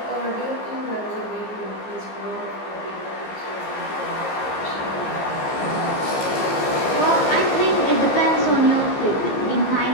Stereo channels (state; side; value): late; right; 15 ms